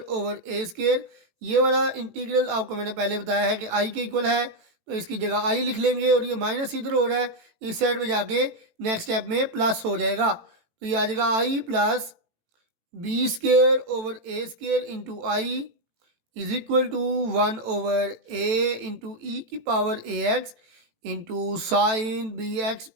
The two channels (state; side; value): late; left; 18 ms